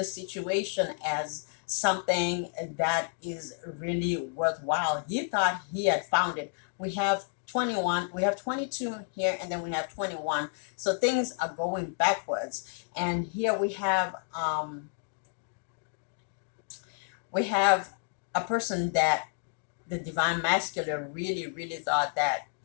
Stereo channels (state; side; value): silent; right; 57 dB below the other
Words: situation as something that is really worthwhile. He thought he had found it. We have 21, we have 22 here, and then we have 21. So things are going backwards. And here we have a person that the divine masculine really thought that,